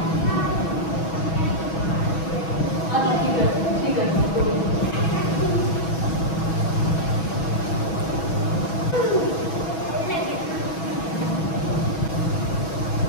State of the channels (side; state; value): right; late; 6.2 ms